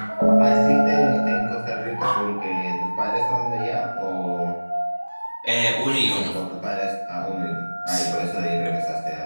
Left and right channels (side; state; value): both; inverted; correlation -1.00